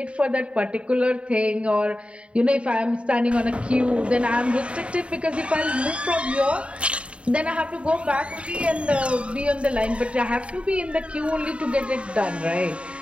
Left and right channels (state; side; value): late; left; 0.060 ms